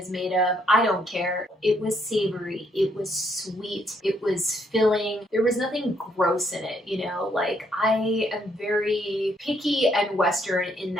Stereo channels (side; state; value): both; normal; correlation 0.72